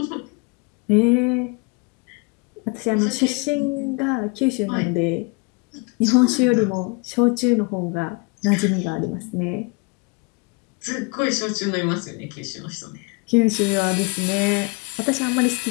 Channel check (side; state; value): right; quieter; 30.5 dB